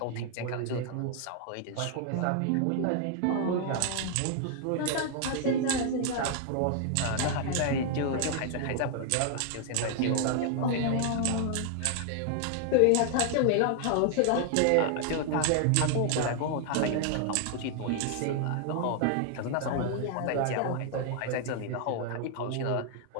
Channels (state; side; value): different; both; correlation 0.00